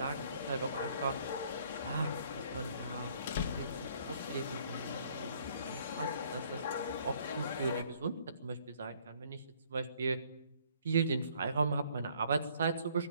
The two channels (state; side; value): inverted; both; correlation -0.61